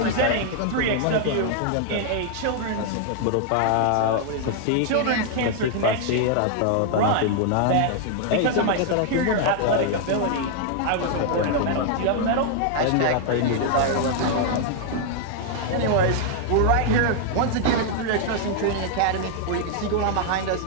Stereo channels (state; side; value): different; both; correlation 0.00